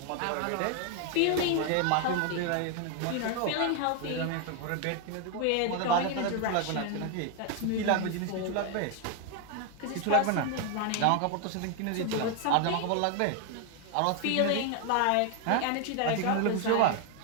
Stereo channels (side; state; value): both; different; correlation 0.01